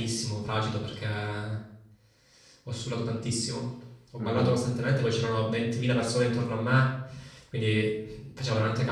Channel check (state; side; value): identical; both; correlation 1.00